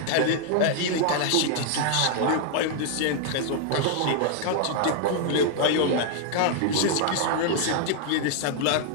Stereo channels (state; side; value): different; both; correlation 0.00